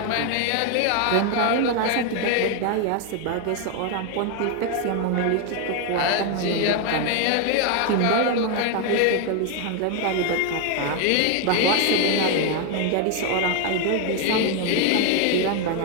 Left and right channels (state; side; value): different; both; correlation 0.01